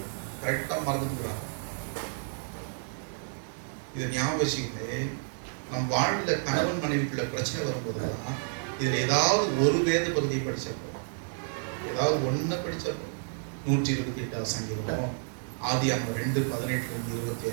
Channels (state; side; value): silent; left; digital silence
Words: கரெக்டா மறந்துக்கிறாங்க. இதை ஞாபகம் வச்சுக்கிட்டு நம் வாழ்ல கணவன் மனைவிக்குள்ள பிரச்சனை வரும்போதுதான் இதுல ஏதாவது ஒரு வேத பகுதியை படிச்சப்போ, ஏதாவது ஒண்ணு படிச்சப்போ, 128வது சங்கீதமோ, ஆதியாகமம்